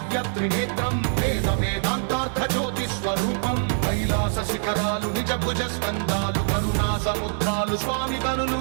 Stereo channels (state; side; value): silent; left; 62 dB below the other